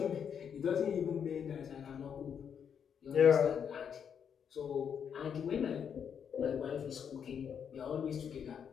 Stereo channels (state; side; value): quieter; right; 7.7 dB